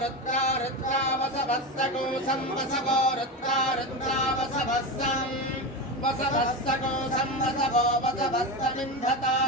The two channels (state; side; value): normal; both; correlation 0.19